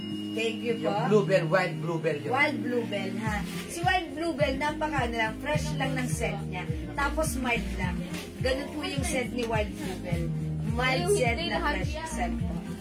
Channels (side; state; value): both; identical; correlation 1.00